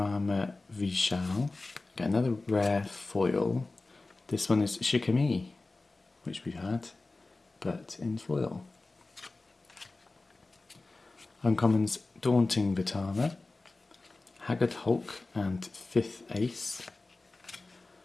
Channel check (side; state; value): right; quieter; 3.3 dB